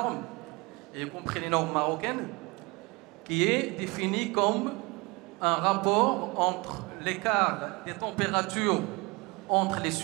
y compris les normes marocaines, qui est définie comme un rapport entre l'écart des températures entre les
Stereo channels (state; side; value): quieter; left; 26.2 dB